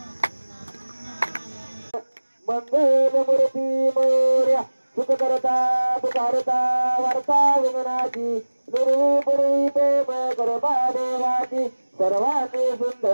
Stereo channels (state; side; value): inverted; both; correlation -1.00